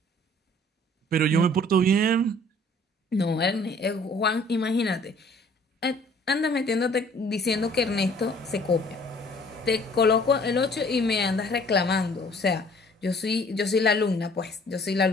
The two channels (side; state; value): both; normal; correlation 0.55